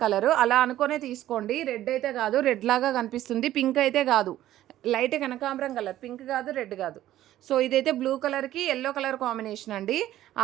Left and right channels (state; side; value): quieter; left; 13.5 dB